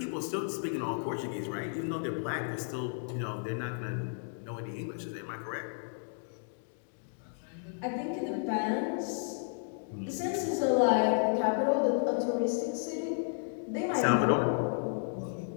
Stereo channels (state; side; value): silent; right; digital silence